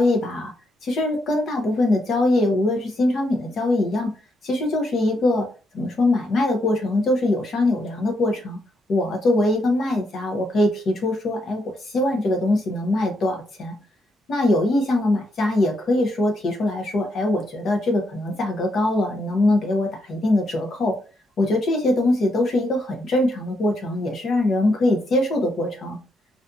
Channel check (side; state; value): both; normal; correlation 0.79